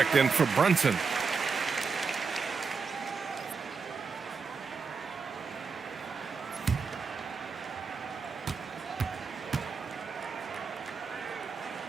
in for Brunson.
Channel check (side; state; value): left; quieter; 5.2 dB